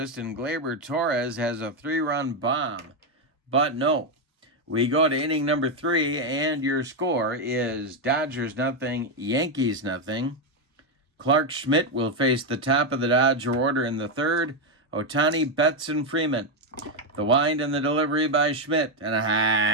and Gleyber Torres has a 3-run bomb. But no, we go to inning number 3, and your score is Dodgers 0, Yankees 0. Clark Schmidt will face the top of the Dodger order in the 3rd. Ohtani, Betts, and Freeman. The wind and the delivery by Schmidt, and a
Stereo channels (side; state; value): both; normal; correlation 0.05